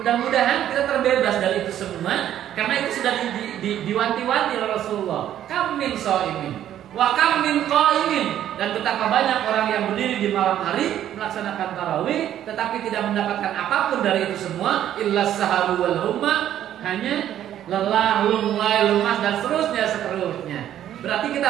kita terbebas dari itu semua, karena itu sudah diwanti-wanti oleh Rasulullah. Kam min shaimin wa kam min qaimin, dan betapa banyak orang yang berdiri di malam hari melaksanakan tarawih tetapi tidak mendapatkan apapun dari itu semua, illa saharu wal humma, hanya lelah, lunglai, lemas dan seterusnya. Berarti kita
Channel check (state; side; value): quieter; left; 11.3 dB